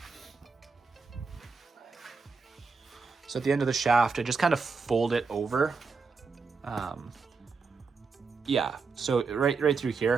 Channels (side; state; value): left; quieter; 4.7 dB